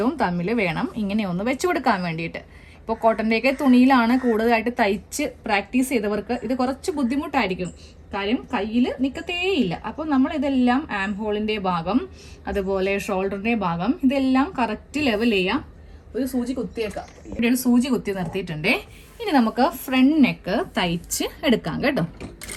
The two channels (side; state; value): both; identical; correlation 1.00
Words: തമ്മിൽ വേണം ഇങ്ങനെ ഒന്ന് വെച്ച് കൊടുക്കാൻ വേണ്ടിയിട്ട്. ഇപ്പോൾ കോട്ടൻ്റെയൊക്കെ തുണിയിലാണ് കൂടുതലായിട്ട് തയ്ച്ച് പ്രാക്ടീസ് ചെയ്തവർക്ക് ഇത് കുറച്ച് ബുദ്ധിമുട്ടായിരിക്കും. കാര്യം കയ്യിൽ നിൽക്കത്തേയില്ല. അപ്പോൾ നമ്മൾ ഇതെല്ലാം ആം ഹോളിൻ്റെ ഭാഗം അതുപോലെ ഷോൾഡറിൻ്റെ ഭാഗം ഇതെല്ലാം കറക്റ്റ് ലെവൽ ചെയ്യാം. ഒരു സൂചി കുത്തിയേക്കാം. ഇവിടെ ഒരു സൂചി കുത്തി നിർത്തിയിട്ടുണ്ടേ. ഇനി നമുക്ക് ഫ്രണ്ട് നെക്ക് തയ്ച്ച് എടുക്കാം കേട്ടോ.